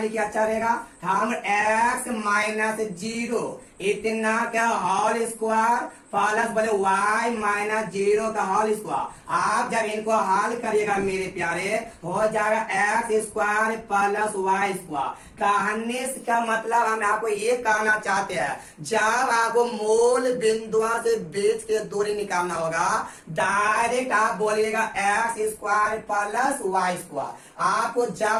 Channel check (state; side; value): identical; both; correlation 1.00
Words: लिखिए, अच्छा रहेगा। हम x माइनस 0 इतना का होल स्क्वायर प्लस बोले y माइनस 0 का होल स्क्वायर। आप जब इनको हल करिएगा मेरे प्यारे, हो जाएगा x square plus y square. कहने का मतलब हम आपको ये कहना चाहते हैं, जब आपको मूल बिंदुओं से बीच की दूरी निकालना होगा, डायरेक्ट आप बोलिएगा x square plus y square. आपको